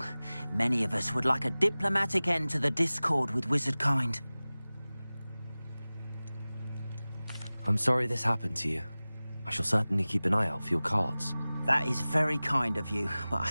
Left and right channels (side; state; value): both; inverted; correlation -0.98